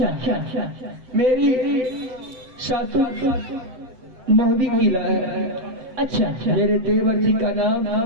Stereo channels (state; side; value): late; left; 7.8 ms